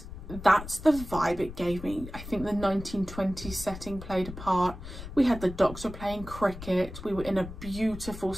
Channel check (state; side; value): noise; left; rumble, 12 dB below the sound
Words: that's the vibe it gave me. I think the 1920s setting played a part. We had the Doctor playing cricket, we were in a beautiful